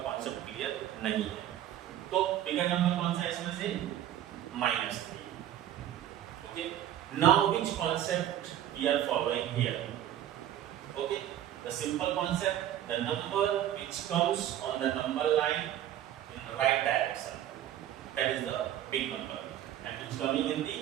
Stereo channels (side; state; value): left; quieter; 11.8 dB